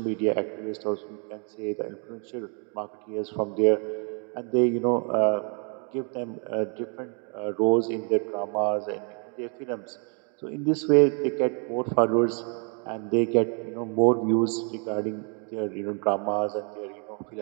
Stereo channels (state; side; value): quieter; left; 38.5 dB